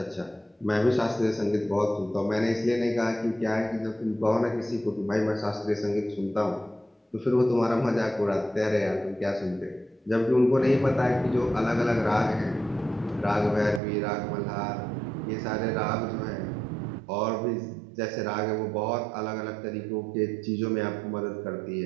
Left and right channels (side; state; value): left; drops out; at 13.8 s